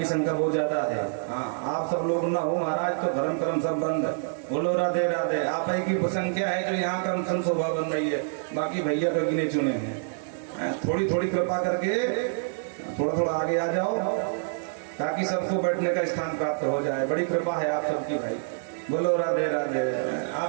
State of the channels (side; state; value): left; silent; digital silence